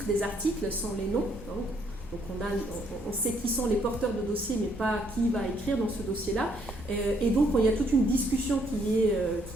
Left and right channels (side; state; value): both; normal; correlation 0.69